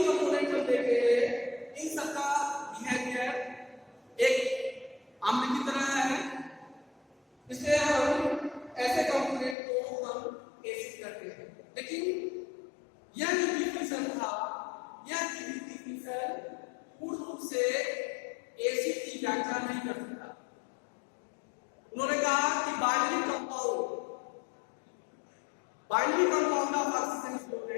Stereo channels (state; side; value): drops out; right; at 9.6 s